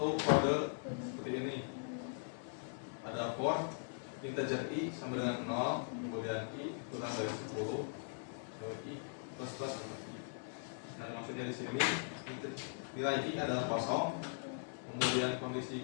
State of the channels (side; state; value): right; silent; digital silence